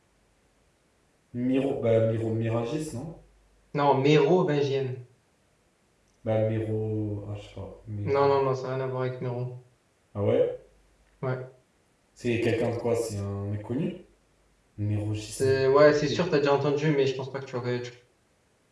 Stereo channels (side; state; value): both; identical; correlation 1.00